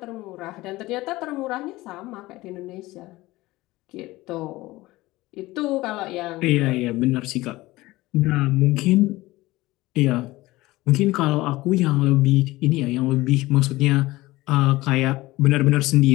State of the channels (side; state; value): right; quieter; 19.0 dB